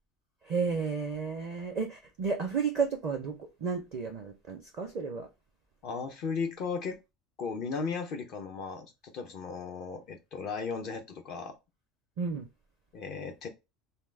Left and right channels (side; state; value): both; normal; correlation 0.33